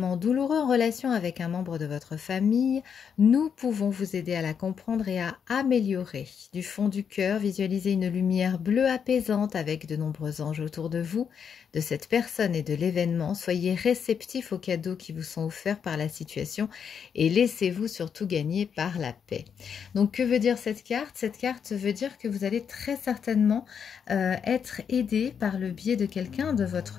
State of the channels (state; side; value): quieter; right; 7.2 dB